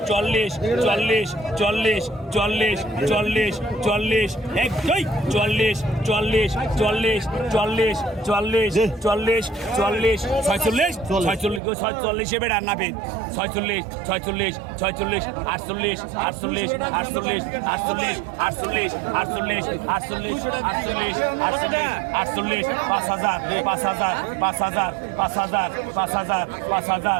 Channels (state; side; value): drops out; left; at 11.6 s